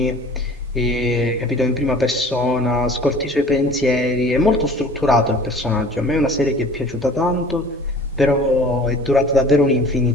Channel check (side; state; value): both; normal; correlation 0.46